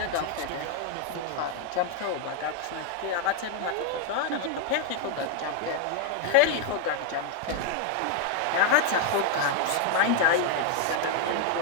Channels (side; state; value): both; different; correlation 0.01